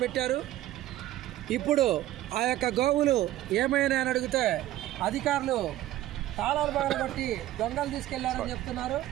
పెట్టారు. ఇప్పుడు ఆ యొక్క గోవులు ఏమైనా అని అడిగితే అధికారులు తాళాలు బాగా బట్టి దొంగలు తీసుకెళ్లారని చెప్తున్నారు.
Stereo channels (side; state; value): left; quieter; 14.4 dB